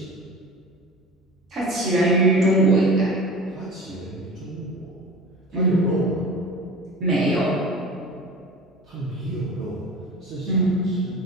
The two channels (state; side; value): normal; both; correlation 0.36